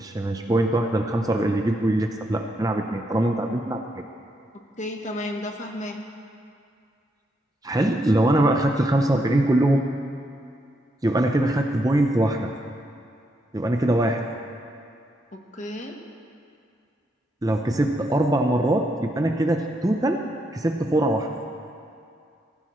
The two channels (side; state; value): both; normal; correlation 0.78